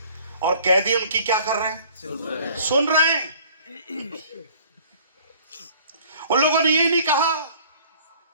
और कैदी उनकी क्या कर रहे हैं? सुन रहे हैं। उन लोगों ने ये नहीं कहा,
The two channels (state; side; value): inverted; both; correlation -0.52